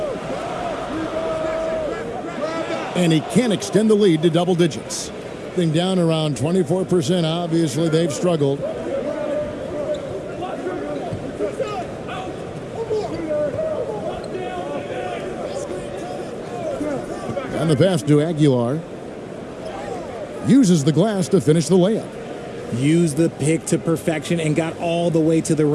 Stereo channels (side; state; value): both; identical; correlation 1.00